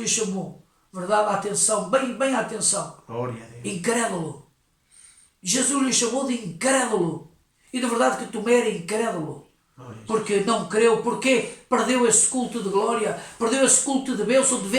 chamou, verdade, atenção, bem atenção. Glória a Deus. Incrédulo. Jesus lhe chamou de incrédulo. E de verdade que Tomé era incrédulo. Porque não creu, porque perdeu esse culto de glória, perdeu esse culto de bênção, de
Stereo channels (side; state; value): both; identical; correlation 1.00